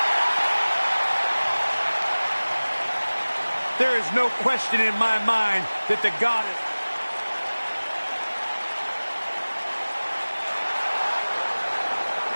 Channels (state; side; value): inverted; both; correlation -1.00